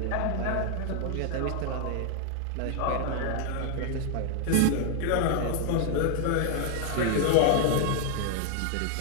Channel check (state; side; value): different; both; correlation 0.00